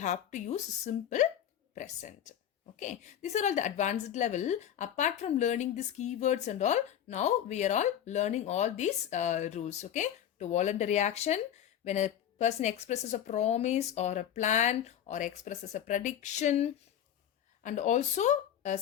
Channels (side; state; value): right; quieter; 10.1 dB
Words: to use simple present. Okay, these are all the advanced level. Apart from learning these keywords and all, now we are all learning all these rules. Okay, to voluntary action, when a person expresses a promise or a plan or expresses a prediction, and also a